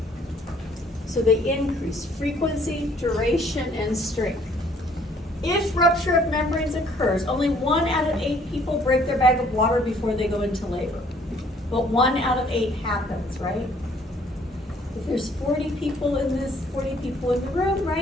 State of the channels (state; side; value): normal; both; correlation 0.61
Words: So they increase frequency, duration, and strength. If rupture of membranes occurs, only 1 out of 8 people break their bag of water before they go into labor. But 1 out of 8 happens, right? If there's 40 people in the room,